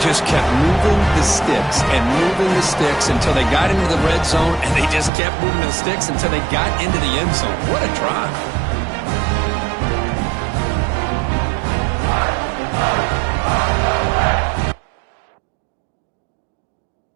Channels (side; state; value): left; drops out; at 5.1 s